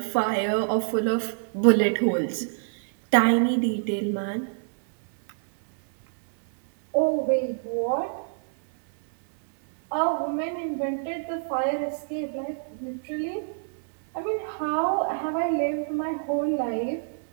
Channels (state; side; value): silent; left; 61 dB below the other